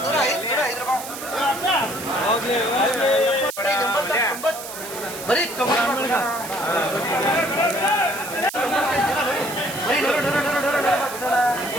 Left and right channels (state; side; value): noise; right; hiss, 11 dB below the sound